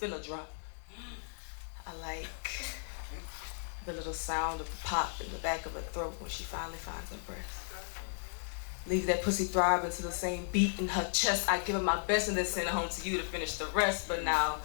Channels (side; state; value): right; silent; digital silence